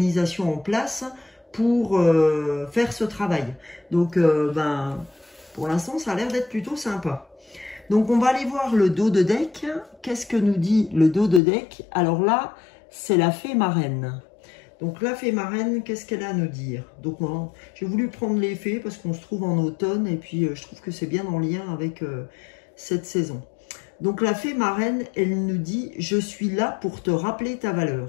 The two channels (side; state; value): right; drops out; at 11.4 s